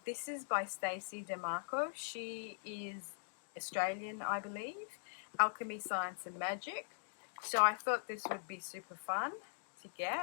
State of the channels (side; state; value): right; silent; digital silence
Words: This is by Stacey DeMarco. She is Australian, I believe. Alchemy, Science and Magic. So I thought this would be super fun to